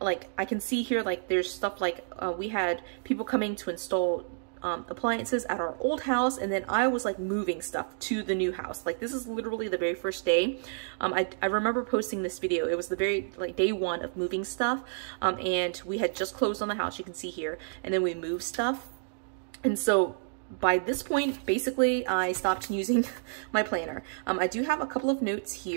I can see here like there's stuff like we had people coming to install appliances at our old house, and then I was like moving stuff to the new house. Like this is literally the very first day. I remember posting this video. It was the very like day one of moving stuff, and we had just closed on the house, you can see here, and then we moved stuff. And so by this point, basically I stopped using my planner. I do have a couple of notes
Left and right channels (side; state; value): left; silent; digital silence